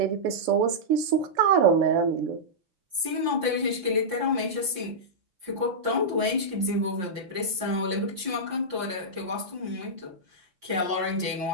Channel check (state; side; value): late; left; 5.7 ms